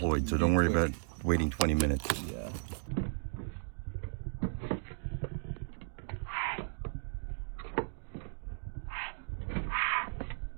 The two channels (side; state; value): left; silent; digital silence